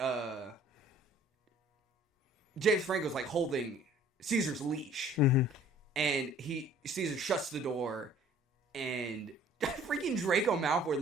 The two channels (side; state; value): both; normal; correlation 0.53